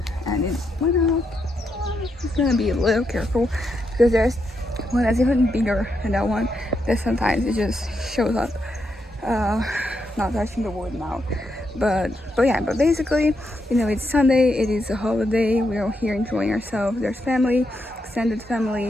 and it's went out. It's gonna be a little careful because there's one that's even bigger than that one. That sometimes it just shows up. Uh, Not touching the wood now, but yeah, but basically, it's Sunday, it is a holiday, we're all here enjoying ourselves. There's family, extended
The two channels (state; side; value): normal; both; correlation 0.82